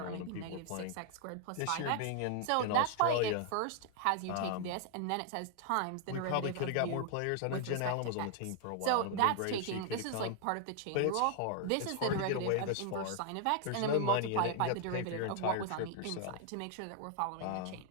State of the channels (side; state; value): both; different; correlation 0.00